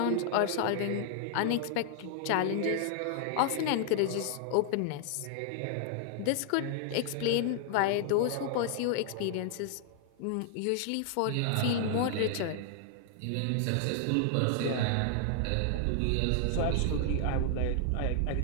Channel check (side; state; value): both; different; correlation 0.00